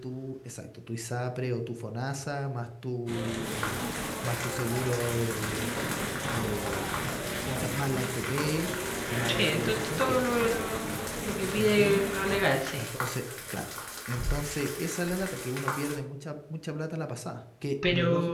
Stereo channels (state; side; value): identical; both; correlation 1.00